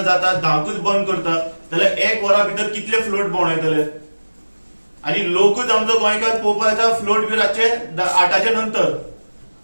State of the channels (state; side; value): inverted; both; correlation -1.00